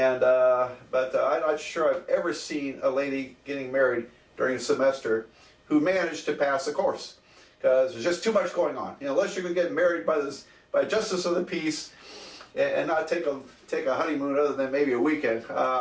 but I'm not sure I've ever seen a lady getting married during a semester who managed to pass a course, because there's just too much going on. Unless you're going to get married by justice of the peace and not take a honeymoon other than maybe a weekend,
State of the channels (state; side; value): identical; both; correlation 1.00